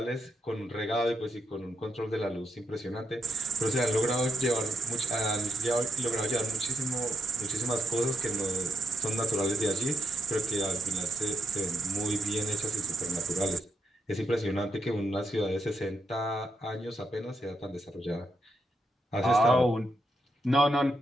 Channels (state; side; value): normal; both; correlation 0.81